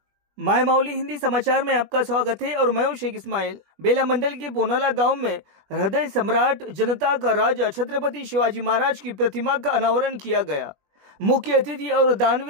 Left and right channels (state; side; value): late; left; 21 ms